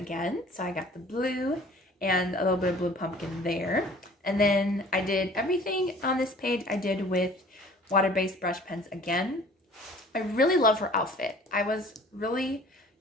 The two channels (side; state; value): both; normal; correlation 0.50